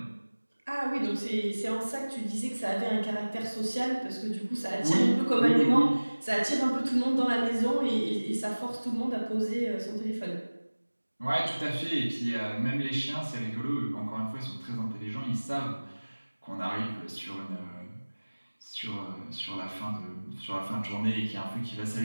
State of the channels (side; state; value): both; inverted; correlation -1.00